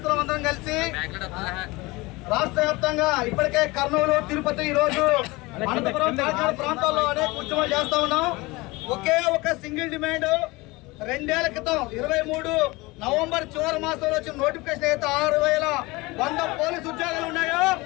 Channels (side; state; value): right; quieter; 22.7 dB